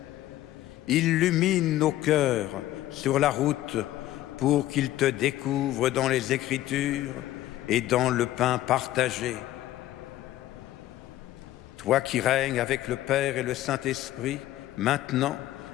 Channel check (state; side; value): quieter; right; 14.4 dB